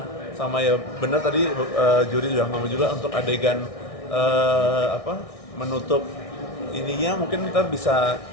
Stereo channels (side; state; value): right; late; 1.6 ms